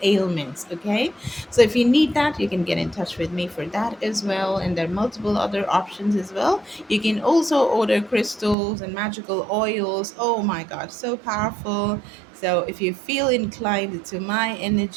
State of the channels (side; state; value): left; drops out; at 8.6 s